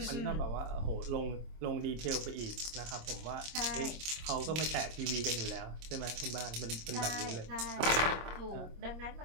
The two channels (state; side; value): late; left; 26 ms